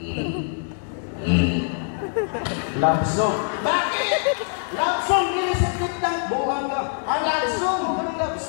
Love song. Bakit? Love song, nilisipit ng buwan ka. Love song. Anong love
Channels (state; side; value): silent; right; digital silence